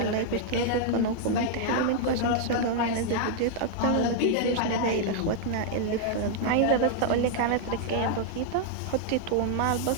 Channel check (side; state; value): both; different; correlation -0.01